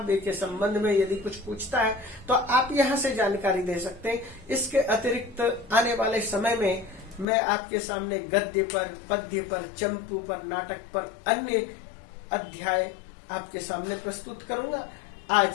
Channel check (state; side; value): drops out; right; at 7.2 s